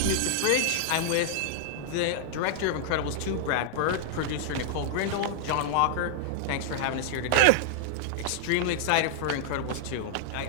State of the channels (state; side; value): different; both; correlation -0.01